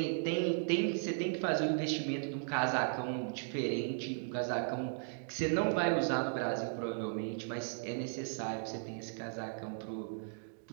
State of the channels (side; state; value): left; silent; digital silence